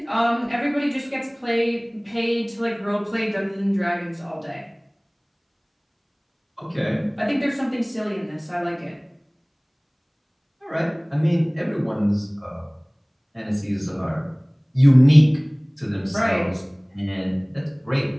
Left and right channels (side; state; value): both; identical; correlation 1.00